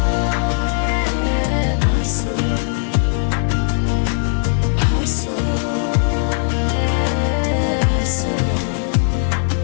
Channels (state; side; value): silent; right; 58 dB below the other